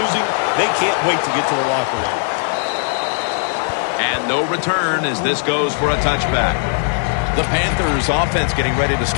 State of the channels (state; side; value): silent; right; 61 dB below the other